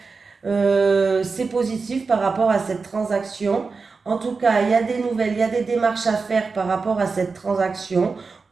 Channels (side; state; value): left; quieter; 4.5 dB